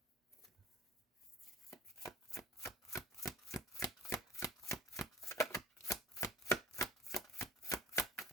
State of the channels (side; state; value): both; normal; correlation 0.42